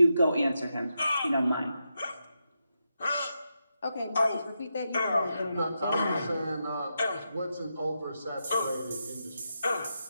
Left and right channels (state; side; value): inverted; both; correlation -0.86